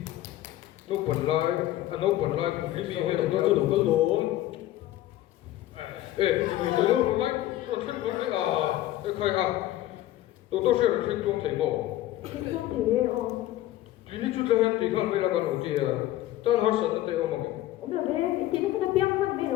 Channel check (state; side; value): quieter; right; 14.6 dB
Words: nó bẩn lại cũng đi rồi doctor cứ đủ cái lỗ ê tôi nó lại tôi thấy con đấy à cái khai à doctor sẽ là thấy chung thấy bảo Kinh doanh thì ini juga yang tinggal melakukan uji ya. Tan harus ada teh omong. Ông là về cái tiền nó không biết hơn mấy